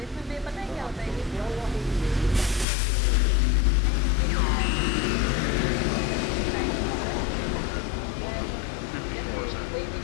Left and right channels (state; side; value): drops out; right; at 2.7 s